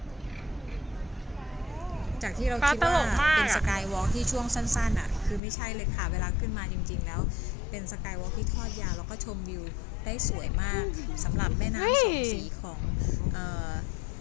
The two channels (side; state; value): right; drops out; at 5.4 s